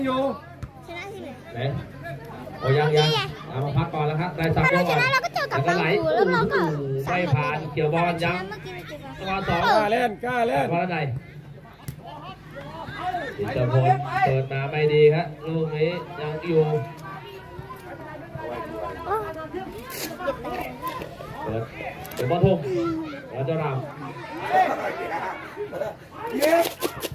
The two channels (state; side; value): identical; both; correlation 1.00